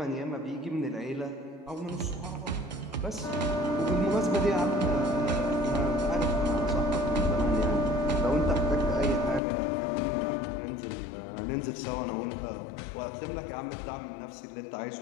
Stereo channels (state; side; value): drops out; right; at 9.4 s